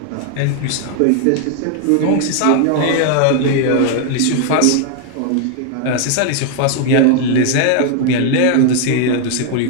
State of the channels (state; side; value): different; both; correlation 0.00